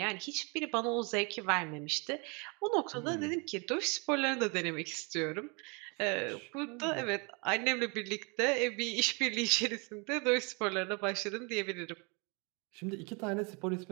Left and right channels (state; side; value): quieter; left; 31.8 dB